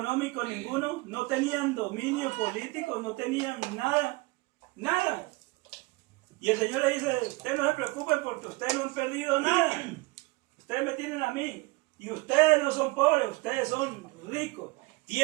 ninguno, no tenían dominio político, no tenían nada, nada. Y el Señor le dice, ustedes no se preocupen porque ustedes no han perdido nada. Ustedes me tienen a mí. Y ustedes no son pobres, ustedes son ricos.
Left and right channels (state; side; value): quieter; left; 23.9 dB